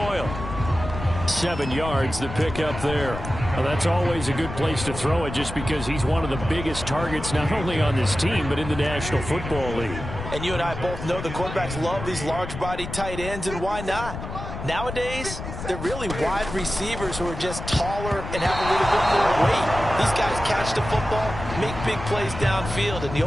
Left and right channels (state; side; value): noise; left; rumble, 8 dB below the sound